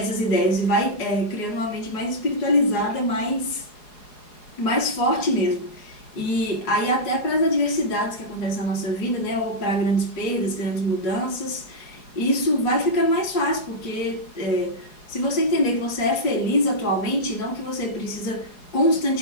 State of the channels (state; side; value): late; right; 4.8 ms